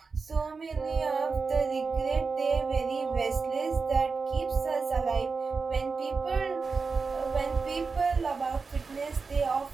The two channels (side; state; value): left; quieter; 4.6 dB